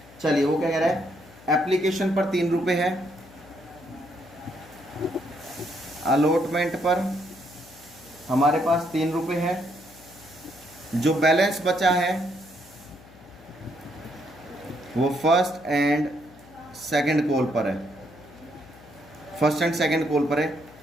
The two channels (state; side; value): noise; left; hum, 23 dB below the sound